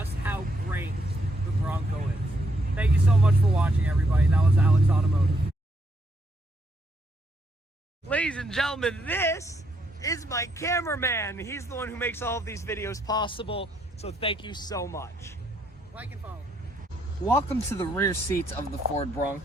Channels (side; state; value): both; normal; correlation 0.75